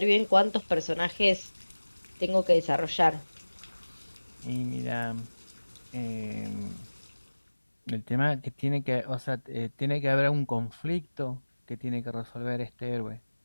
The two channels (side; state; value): both; inverted; correlation -1.00